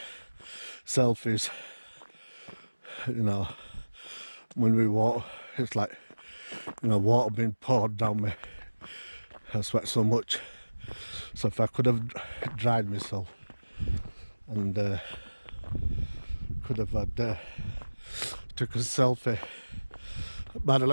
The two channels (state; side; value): inverted; both; correlation -1.00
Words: selfies. You know, when we walk, it's like, you know, water being poured down me. I sweat so much. So if I could have dried myself and could have had took a selfie. By the